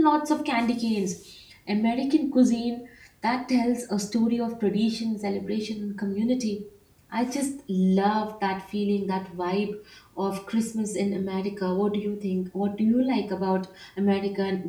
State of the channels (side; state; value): both; identical; correlation 1.00